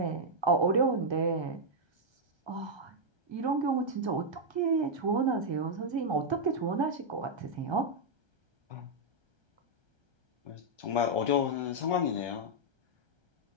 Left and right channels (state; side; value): late; left; 1.3 ms